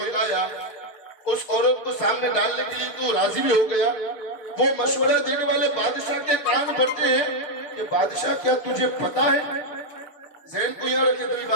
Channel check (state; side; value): late; right; 6.5 ms